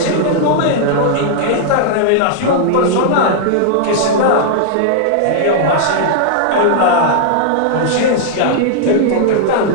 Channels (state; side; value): different; both; correlation -0.01